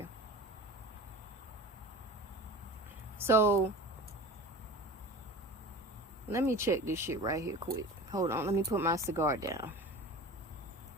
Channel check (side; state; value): both; normal; correlation 0.36